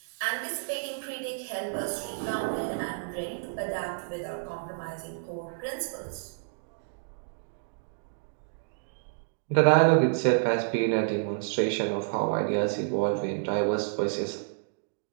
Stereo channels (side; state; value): left; silent; digital silence